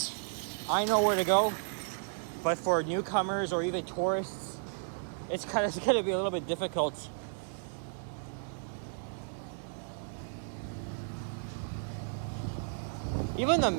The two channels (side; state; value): left; silent; 55 dB below the other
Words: I know where to go. But for newcomers or even tourists, it's going to be a little bit difficult. Even the